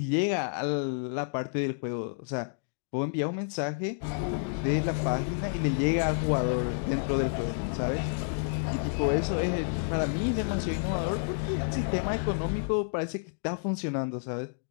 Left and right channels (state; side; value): silent; right; digital silence